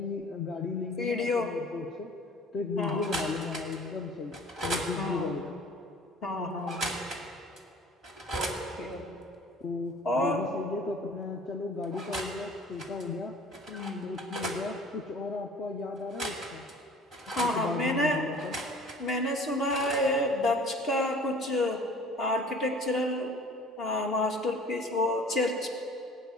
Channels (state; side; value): normal; both; correlation 0.47